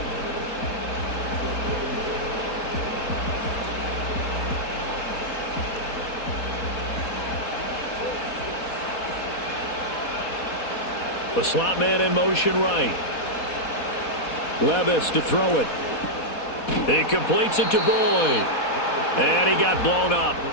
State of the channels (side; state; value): right; late; 4.1 ms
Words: The slot man in motion right. Levis to throw it. He completes it to Boyd. And he got blown up.